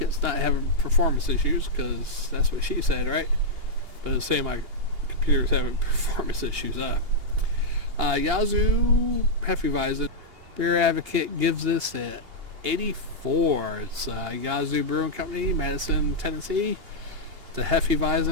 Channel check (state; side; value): late; left; 2.8 ms